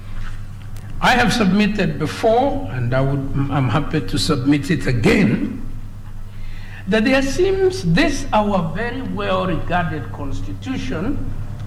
I have submitted before, and I'm happy to submit it again, that there seems this our very well regarded constitution,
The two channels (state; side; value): identical; both; correlation 1.00